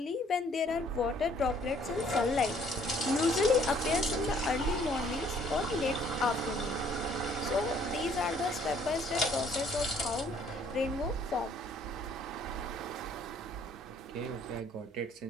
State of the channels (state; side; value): normal; both; correlation 0.61